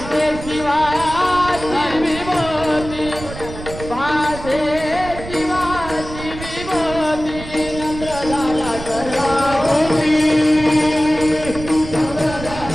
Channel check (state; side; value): noise; right; rumble, 11 dB below the sound